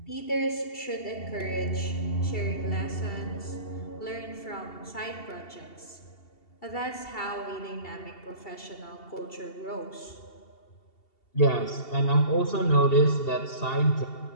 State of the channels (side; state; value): right; late; 2.7 ms